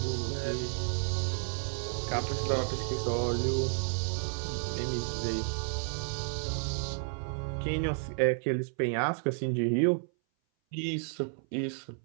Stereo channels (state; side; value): silent; left; 57 dB below the other